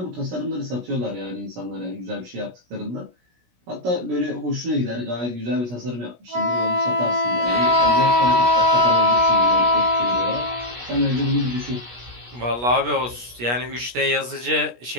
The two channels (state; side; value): late; left; 17 ms